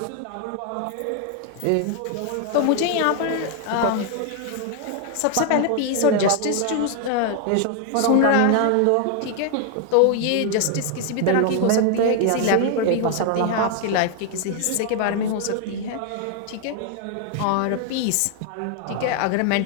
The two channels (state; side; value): different; both; correlation 0.01